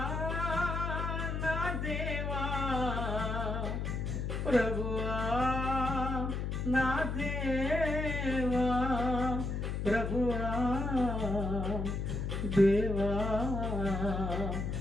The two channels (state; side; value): noise; left; hum, 2 dB below the sound